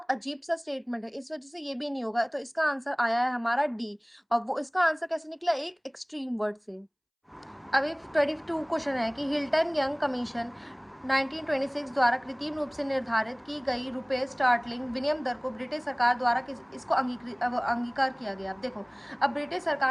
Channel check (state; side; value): identical; both; correlation 1.00